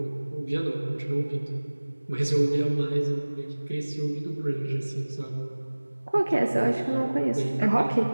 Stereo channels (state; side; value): inverted; both; correlation -1.00